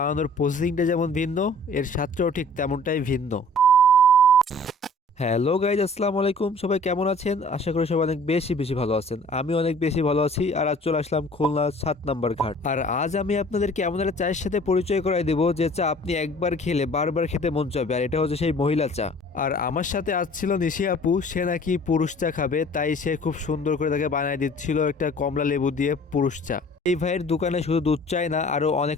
প্রসেসিংটা যেমন ভিন্ন, এর স্বাদটাও ঠিক তেমনটাই ভিন্ন। হ্যালো গাইজ, আসসালামু আলাইকুম। সবাই কেমন আছেন? আশা করি সবাই অনেক বেশি বেশি ভালো আছেন। আমি অনেক বেশি ভালো আছি। আর আজ চলে আসলাম খুলনা 7 নম্বর ঘাট। আর আজ আমি আপনাদেরকে এমন একটা চায়ের সাথে পরিচয় করাই দেবো যে চা আপনি একবার খেলে বারবার খেতে মন চাবে। আর এটা হচ্ছে সেই মহিলা চা। আর আমার সাথে আজ ছিল নিশি আপু। সে নাকি পুরুষ চা খাবে, তাই সে খুব সুন্দর করে তাকে বানিয়ে দিচ্ছিল একটা কমলা লেবু দিয়ে পুরুষ চা। এই ভাইয়ের দোকানে শুধু দুধ চাই না, আরো অনেক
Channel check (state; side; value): normal; both; correlation 0.50